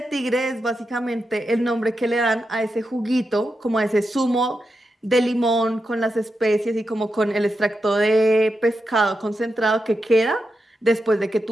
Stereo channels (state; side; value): normal; both; correlation 0.87